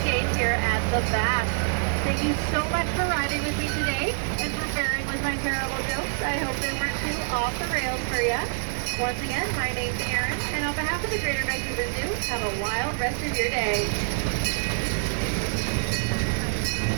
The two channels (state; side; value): silent; left; digital silence